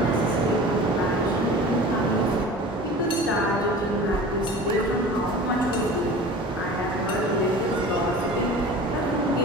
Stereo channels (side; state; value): both; normal; correlation 0.39